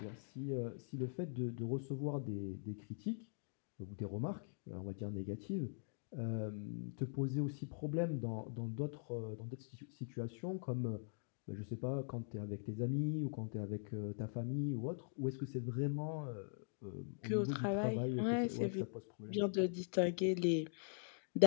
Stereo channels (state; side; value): silent; right; digital silence